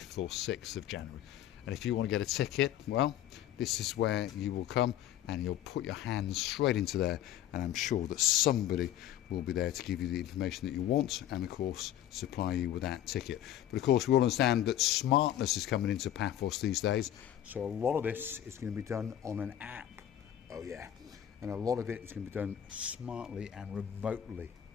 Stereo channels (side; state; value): right; quieter; 11.6 dB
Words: or 6th of January. And if you want to get a ticket, well, this is where you will come and you'll put your hands straight into there, and I'm sure that somebody will be there to give you the information that you want and of course supply you with that ticket. But of course we all understand that smartness is coming into Paphos these days, so a lot of this is going to be done on an app. Oh yeah, and a lot of it is going to be done smartly and remotely,